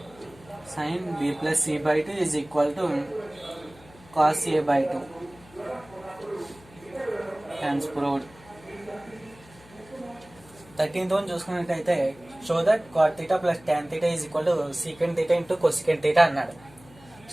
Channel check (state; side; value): noise; left; hum, 24 dB below the sound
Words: sin b plus c by 2 is equal to cos a by 2. Hence proved. 13th one చూసుకున్నట్టయితే show that cot theta plus tan theta is equal to secant theta into cosecant theta అన్నాడు.